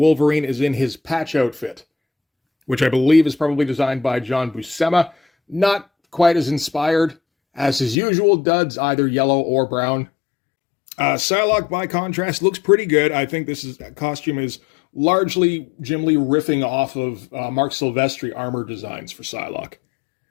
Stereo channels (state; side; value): drops out; right; at 8.0 s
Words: is in his patch outfit, which I believe is probably designed by John Buscema. Not quite as inspired as his usual duds, either yellow or brown. Psylocke, by contrast, looks pretty good. I think this costume is largely Jim Lee riffing off of Mark Silvestri armor designs for Psylocke.